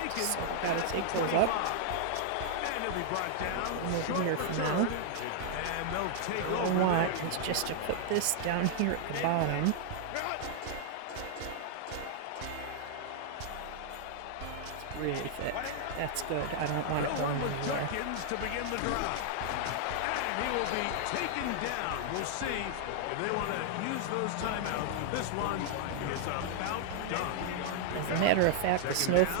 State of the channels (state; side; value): different; both; correlation -0.01